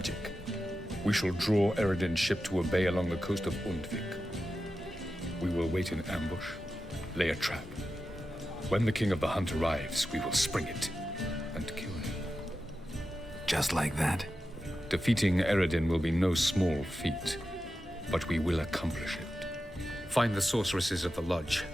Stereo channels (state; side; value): normal; both; correlation 0.91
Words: we shall draw Yrden's ship to a bay along the coast of Undvik. We will wait in ambush, lay a trap. When the King of the Hunt arrives, we will spring it and kill him. Just like that? Defeating Yrden will be no small feat, but we will accomplish it. Find the sorceresses of the lodge,